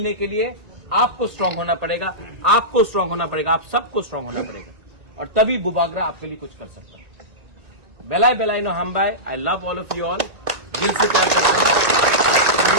के लिए आपको स्ट्रांग होना पड़ेगा, आपको स्ट्रांग होना पड़ेगा, आप सबको स्ट्रांग होना पड़ेगा, और तभी बुबागरा आपके लिए कुछ कर सकता है। बेलाई बेलाई नो हम bye, I love all of you all, दिल से प्यार करता हूं।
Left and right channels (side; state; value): left; late; 1.9 ms